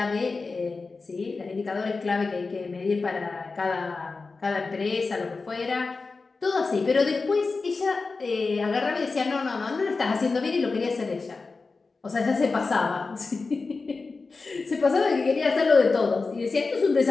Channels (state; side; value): quieter; right; 4.1 dB